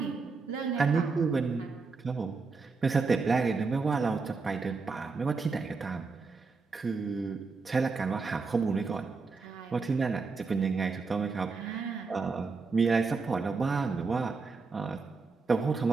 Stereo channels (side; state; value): left; quieter; 4.4 dB